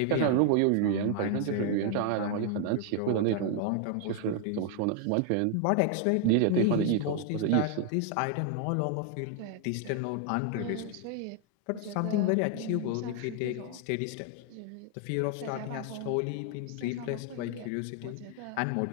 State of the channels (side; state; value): both; different; correlation 0.00